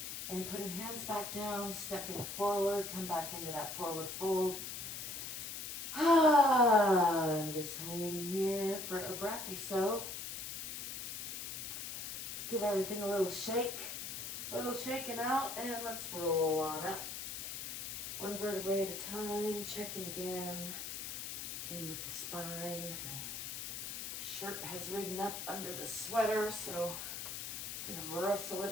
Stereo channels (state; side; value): noise; left; hiss, 6 dB below the sound